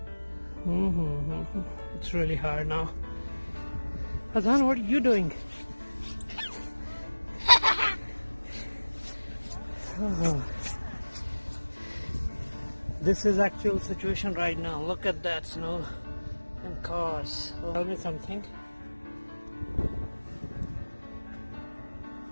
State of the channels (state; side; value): inverted; both; correlation -1.00